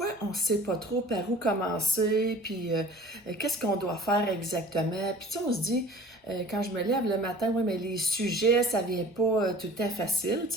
on ne sait pas trop par où commencer, puis qu'est-ce qu'on doit faire exactement. Puis tu sais, on se dit, quand je me lève le matin, oui, mais les sujets, ça vient pas tout le temps facile, tu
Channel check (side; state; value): both; normal; correlation 0.44